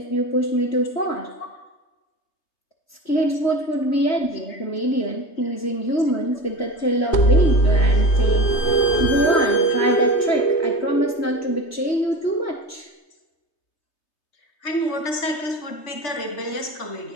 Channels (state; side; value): late; right; 3.3 ms